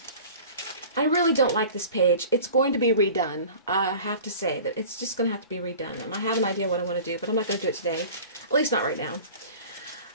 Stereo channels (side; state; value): both; inverted; correlation -0.42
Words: really don't like this page. It's going to be redone. I have to say that it's just going to have to be redone, and I have an idea what I want to do, but I'm not going to do it today. At least not right now.